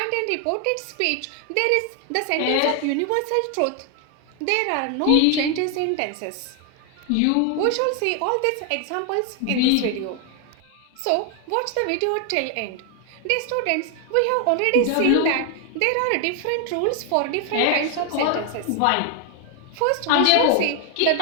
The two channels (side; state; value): both; different; correlation 0.01